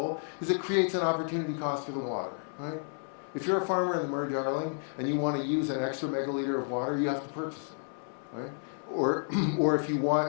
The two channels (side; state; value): right; silent; 57 dB below the other